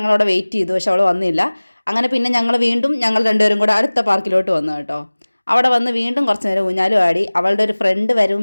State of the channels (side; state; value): both; inverted; correlation -1.00